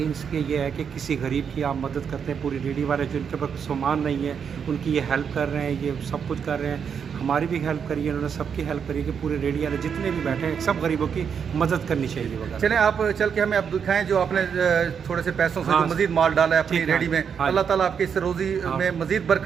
اس کے یہ ہے کہ کسی غریب کی آپ مدد کرتے ہیں. پوری ریڈی والے جو ان کے پاس سامان نہیں ہے ان کی یہ ہیلپ کر رہے ہیں, یہ سب کچھ کر رہے ہیں. ہماری بھی ہیلپ کری ہے, انہوں نے سب کی ہیلپ کری کہ پورے ریڈی والے جتنے بھی بیٹھے ہیں سب غریبوں کی مدد کرنی چاہیے وغیرہ. چلیں آپ چل کے ہمیں اب دکھائیں جو آپ نے تھوڑے سے پیسوں سے جو مزید مال ڈالا ہے اپنی ریڈی میں. اللہ تعالیٰ آپ کی اس روزی میں مزید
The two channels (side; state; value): left; quieter; 7.1 dB